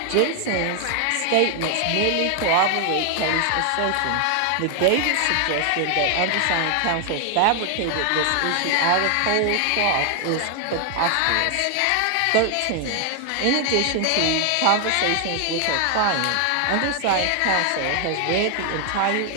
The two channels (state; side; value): different; both; correlation 0.00